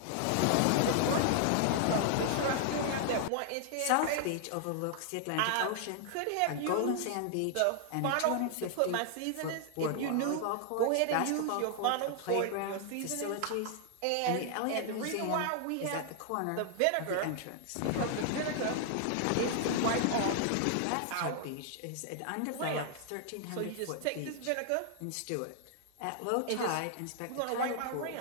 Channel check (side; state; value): both; different; correlation 0.00